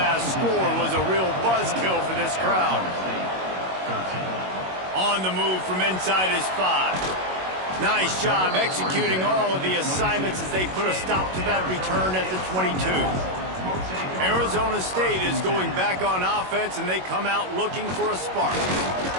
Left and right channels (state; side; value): late; left; 21 ms